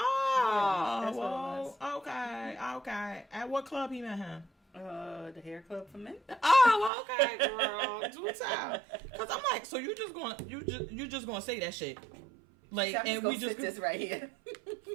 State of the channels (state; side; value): drops out; left; at 6.9 s